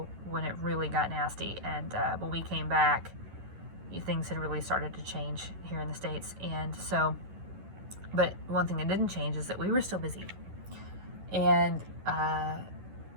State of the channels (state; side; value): late; left; 11 ms